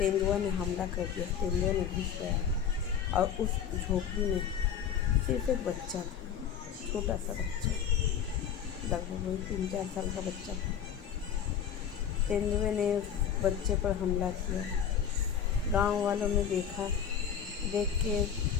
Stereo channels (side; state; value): right; quieter; 8.3 dB